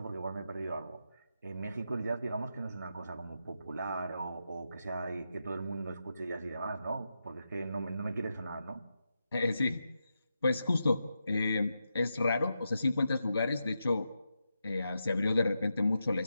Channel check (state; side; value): inverted; both; correlation -0.87